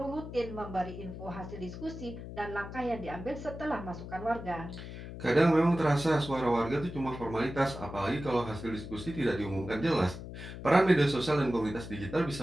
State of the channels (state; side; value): noise; left; hum, 10 dB below the sound